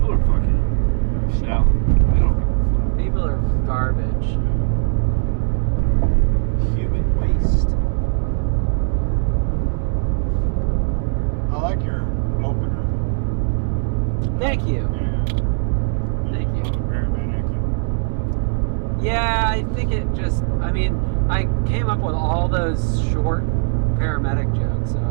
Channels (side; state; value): left; silent; digital silence